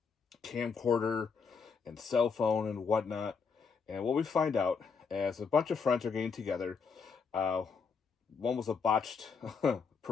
camcorder and cell phone and whatnot. And what we find out, as a bunch of friends are getting together, uh, one was a botched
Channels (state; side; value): quieter; right; 5.5 dB